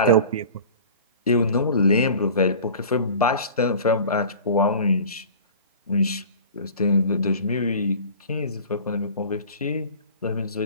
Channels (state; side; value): inverted; both; correlation -0.41